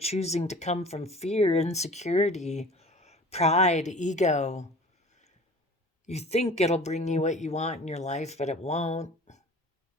to come from fear, insecurity, pride, ego. You think it'll bring you what you want in your life, but it won't.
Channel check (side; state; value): both; normal; correlation 0.43